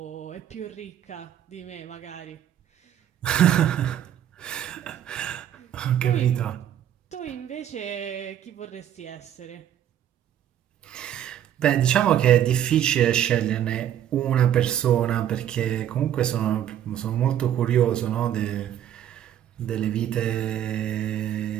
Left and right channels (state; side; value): quieter; left; 10.6 dB